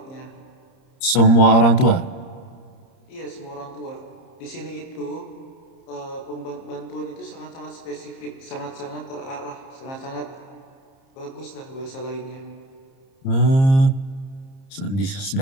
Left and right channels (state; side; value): late; right; 30 ms